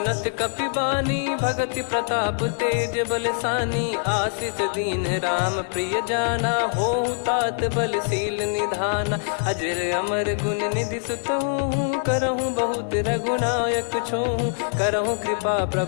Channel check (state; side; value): silent; right; digital silence